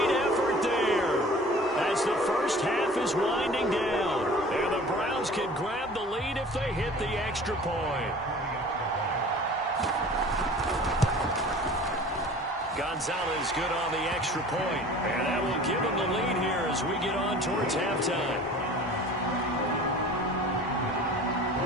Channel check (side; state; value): both; normal; correlation 0.44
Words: effort there as the first half is winding down. And the Browns can grab the lead if they hit the extra point. Gonzalez good on the extra point. And that will give them the lead here as we get on towards halftime.